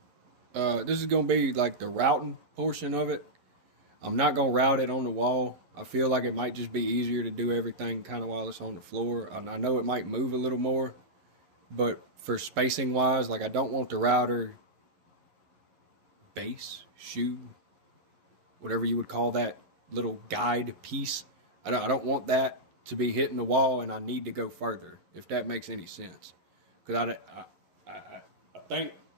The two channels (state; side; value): late; left; 11 ms